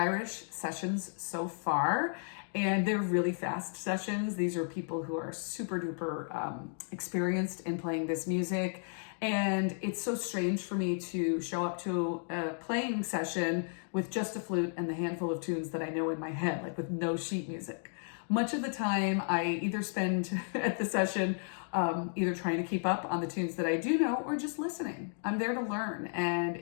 sessions so far, and they're really fast sessions. These are people who are super duper experienced in playing this music. And it's so strange for me to show up to a playing session with just a flute and the handful of tunes that I know in my head, like with no sheet music. Much of the time I either spend at the session either trying to keep up on the tunes that I do know or just listening. I'm there to learn, and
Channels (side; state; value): right; silent; 55 dB below the other